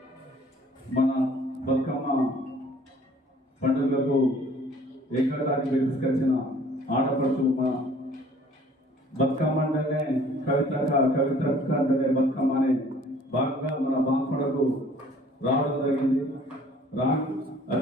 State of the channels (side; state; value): both; normal; correlation 0.54